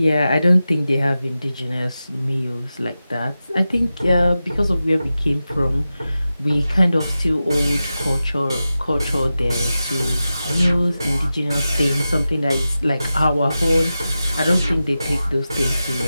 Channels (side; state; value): both; inverted; correlation -0.93